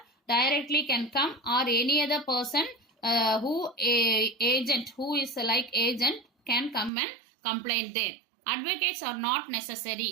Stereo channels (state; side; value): drops out; left; at 6.9 s